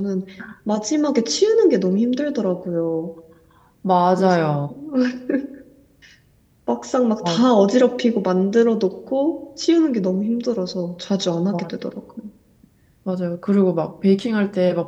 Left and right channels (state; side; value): identical; both; correlation 1.00